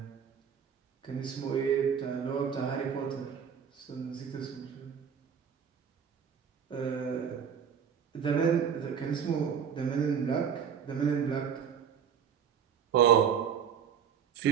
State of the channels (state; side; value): quieter; left; 7.6 dB